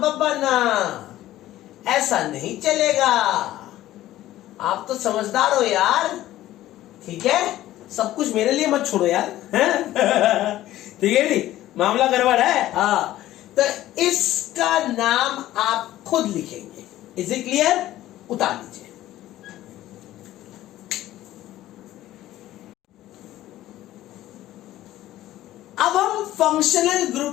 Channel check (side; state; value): right; quieter; 14.5 dB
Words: ना, ऐसा नहीं चलेगा। आप तो समझदार हो यार, ठीक है। सब कुछ मेरे लिए मत छोड़ो यार, ठीक है नहीं, मामला गड़बड़ है। हाँ, तो इसका नाम आप खुद लिखेंगे। Is it clear? उतार लीजिए। अब हम फंक्शनल